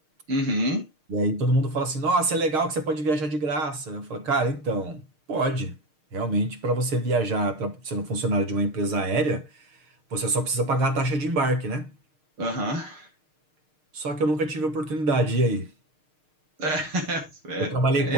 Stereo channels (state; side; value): late; left; 6.5 ms